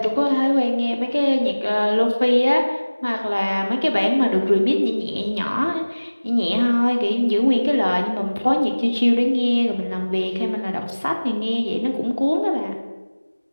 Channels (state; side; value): inverted; both; correlation -1.00